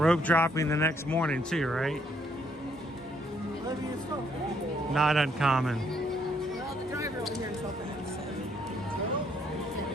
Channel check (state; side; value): normal; both; correlation 0.69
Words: dropping the next morning too, right? Not uncommon. Well, the driver over here is helping us.